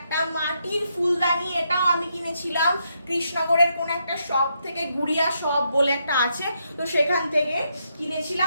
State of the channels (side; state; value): both; inverted; correlation -0.79